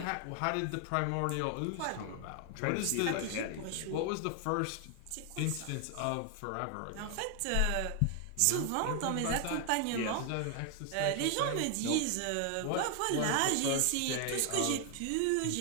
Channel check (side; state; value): both; different; correlation 0.00